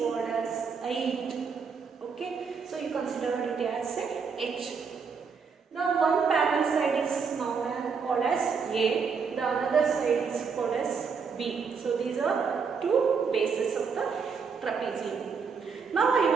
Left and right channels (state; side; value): quieter; left; 5.7 dB